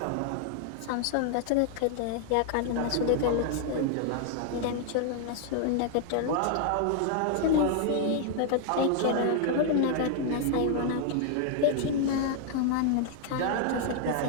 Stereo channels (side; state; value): both; different; correlation 0.00